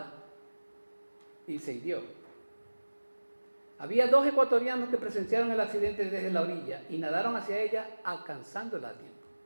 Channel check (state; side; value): inverted; both; correlation -1.00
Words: y se hirió. Había 2 ecuatorianos que presenciaron el accidente desde la orilla y nadaron hacia ella alcanzándola a tiempo.